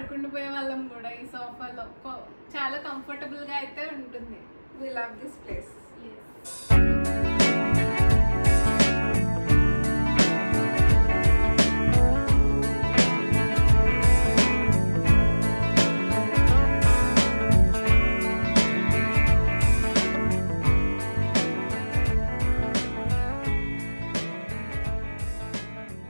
వాళ్ళం కూడా ఈ సోఫాలో. చాలా కంఫర్టబుల్ గా అయితే ఉంటుంది. We love this place.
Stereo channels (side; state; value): both; inverted; correlation -1.00